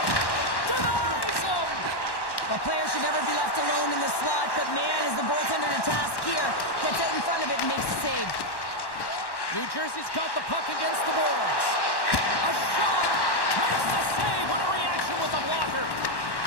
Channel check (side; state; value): right; late; 1.1 ms